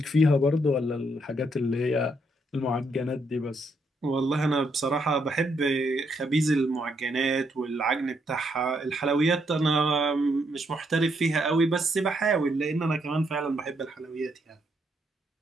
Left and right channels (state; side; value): normal; both; correlation 0.75